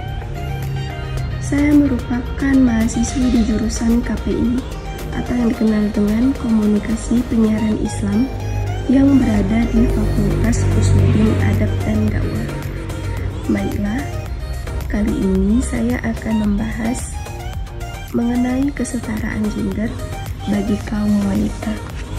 Saya merupakan mahasiswi di jurusan KPI atau yang dikenal dengan Komunikasi Penyiaran Islam yang berada di Fakultas Usuluddin Adab dan Dakwah. Baiklah, kali ini saya akan membahas mengenai kesetaraan gender bagi kaum wanita.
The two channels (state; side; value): identical; both; correlation 1.00